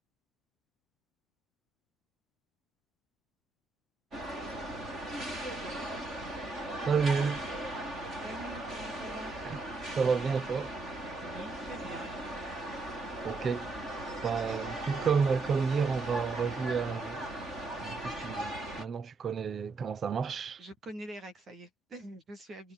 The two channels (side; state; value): left; quieter; 4.2 dB